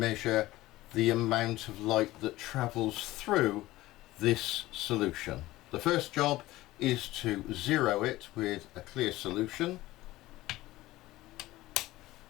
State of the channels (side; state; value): right; quieter; 17.4 dB